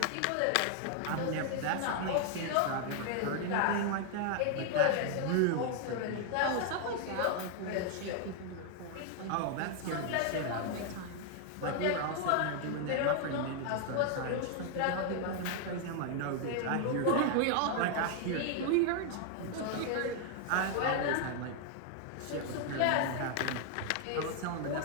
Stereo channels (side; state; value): both; different; correlation 0.00